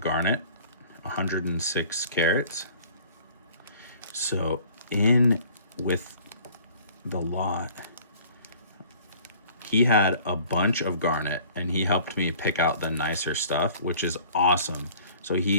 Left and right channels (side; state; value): both; inverted; correlation -0.51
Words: 106 carats. So in with the lot, he had a bunch of garnet and he helped me pick out the nicer stuff, which is awesome. So